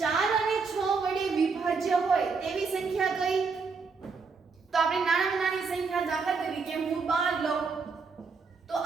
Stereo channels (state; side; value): quieter; left; 4.9 dB